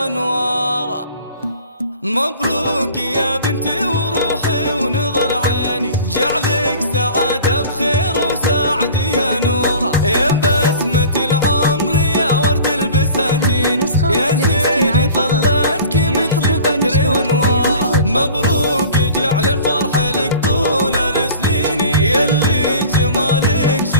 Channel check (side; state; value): both; inverted; correlation -0.43